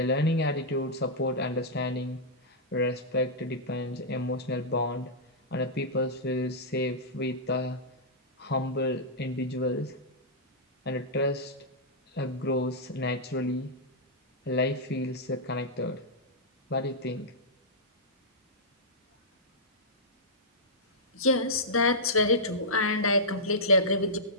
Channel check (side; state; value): both; normal; correlation -0.12